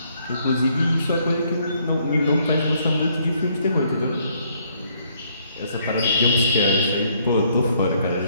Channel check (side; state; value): both; inverted; correlation -0.68